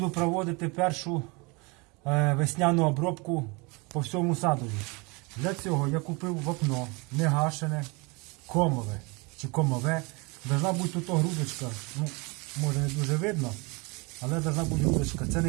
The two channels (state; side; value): quieter; left; 27.9 dB